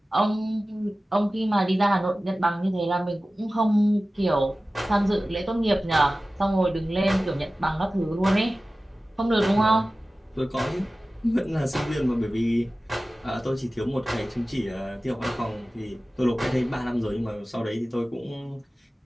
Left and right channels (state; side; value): normal; both; correlation 0.96